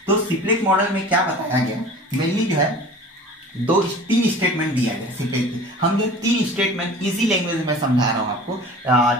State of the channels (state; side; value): normal; both; correlation 0.41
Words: तो सिप्लेक मॉडल में क्या बताया गया, मेनली जो है तीन स्टेटमेंट दिया गया सिप्लेक की। हम जो 3 स्टेटमेंट इजी लैंग्वेज में समझा रहा हूँ आपको।